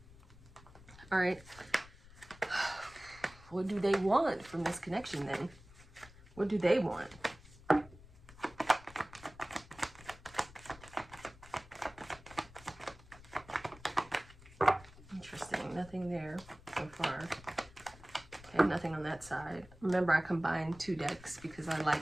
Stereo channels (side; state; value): left; noise; rumble, 21 dB below the sound